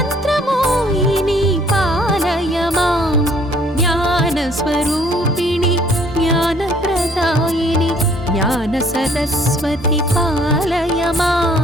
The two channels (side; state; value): both; normal; correlation 0.60